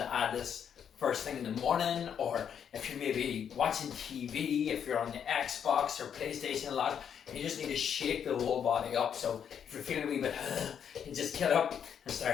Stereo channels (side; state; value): right; quieter; 8.1 dB